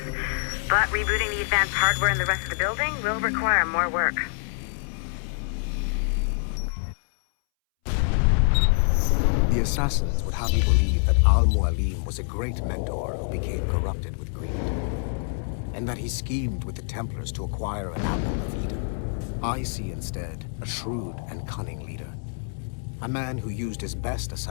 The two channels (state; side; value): silent; right; 61 dB below the other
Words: but rebooting the advanced hardware in the rest of the building will require more work. The assassins would have you believe that Al-Mualim was a great mentor who became corrupted with greed, and that he schemed with the Templars to acquire an apple of Eden. I see instead a shrewd and cunning leader. A man who used his best